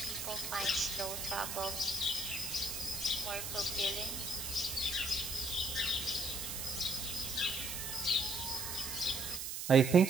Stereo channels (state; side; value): noise; right; hiss, 5 dB below the sound